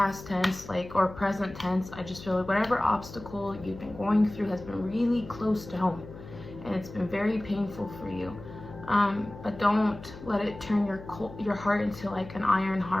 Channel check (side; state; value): left; noise; hum, 15 dB below the sound